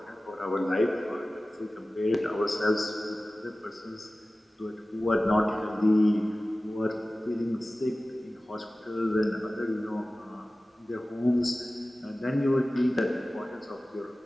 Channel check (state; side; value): normal; both; correlation 0.97